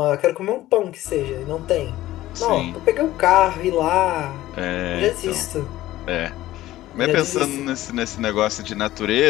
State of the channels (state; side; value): quieter; right; 15.4 dB